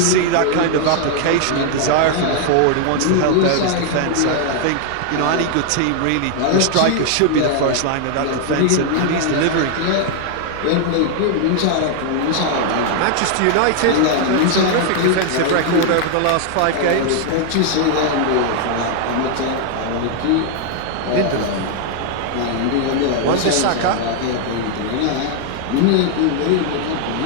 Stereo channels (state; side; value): different; both; correlation 0.00